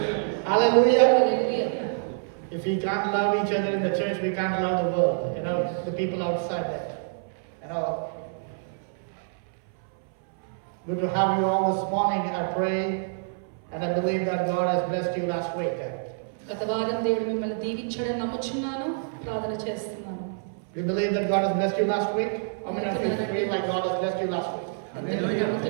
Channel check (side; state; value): left; silent; 60 dB below the other